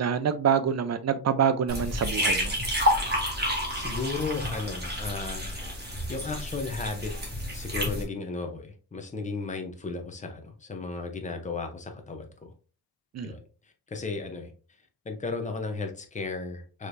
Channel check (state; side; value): normal; both; correlation 0.06